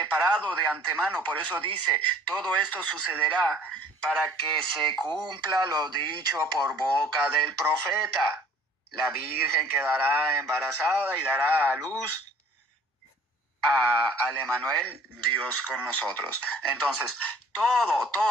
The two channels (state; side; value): normal; both; correlation 0.53